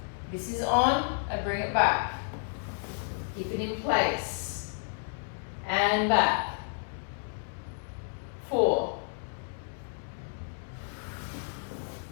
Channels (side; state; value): right; silent; digital silence